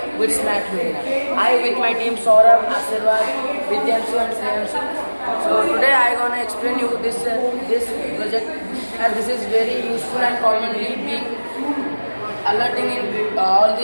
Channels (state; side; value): inverted; both; correlation -1.00